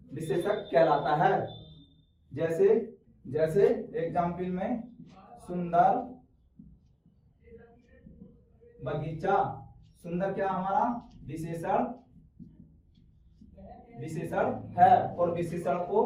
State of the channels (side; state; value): both; identical; correlation 1.00